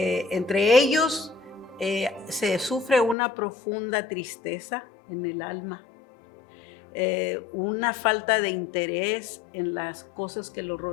ellos, se sufre una profunda tristeza en el alma, una falta de interés en las cosas que lo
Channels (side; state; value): right; drops out; at 3.2 s